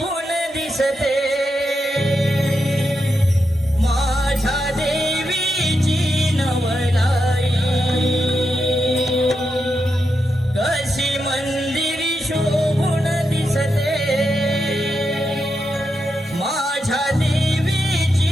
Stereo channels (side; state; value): both; normal; correlation 0.85